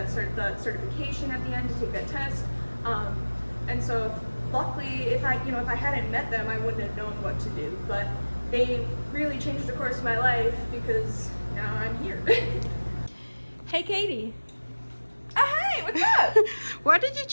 certification at the end to take that test. And so luckily, if I hadn't met them, I wouldn't have known what to do. But they really changed the course of my life because now I'm here. Hey Katie. Hey, what's up? Why did you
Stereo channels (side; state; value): both; inverted; correlation -1.00